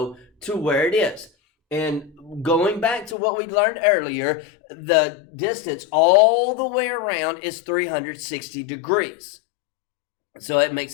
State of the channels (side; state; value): right; drops out; at 3.2 s